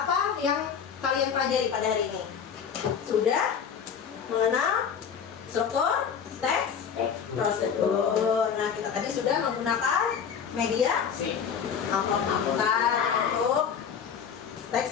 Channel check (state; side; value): quieter; right; 7.3 dB